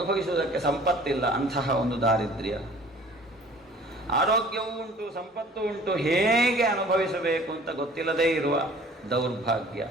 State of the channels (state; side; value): normal; both; correlation 0.50